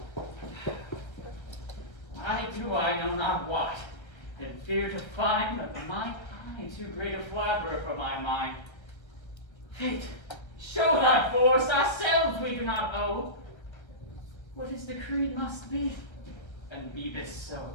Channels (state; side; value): late; right; 1.4 ms